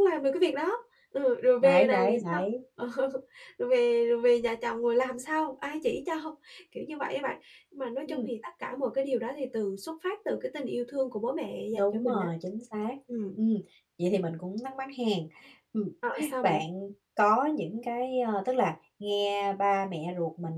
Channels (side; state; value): both; identical; correlation 1.00